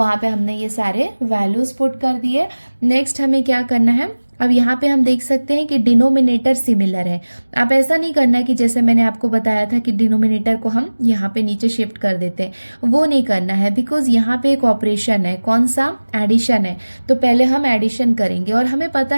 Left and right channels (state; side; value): inverted; both; correlation -1.00